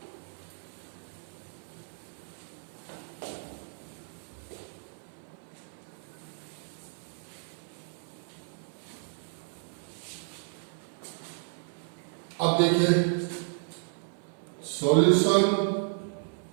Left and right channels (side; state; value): left; silent; 56 dB below the other